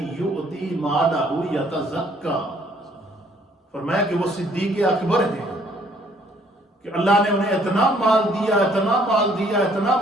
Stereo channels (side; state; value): both; normal; correlation 0.63